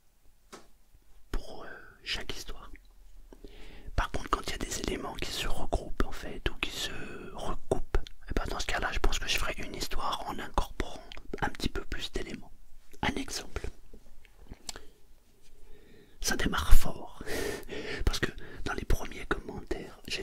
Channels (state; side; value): identical; both; correlation 1.00